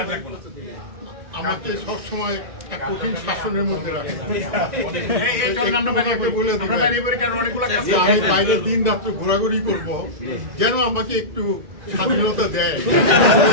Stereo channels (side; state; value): left; late; 1.9 ms